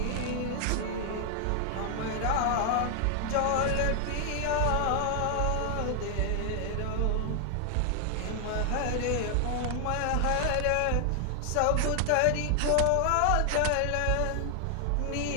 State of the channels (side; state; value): both; different; correlation 0.00